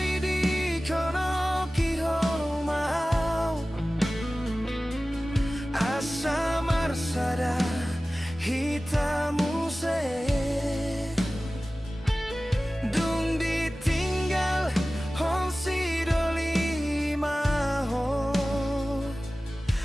hitamu se dung ditinggal hong si doli maho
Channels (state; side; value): normal; both; correlation 0.97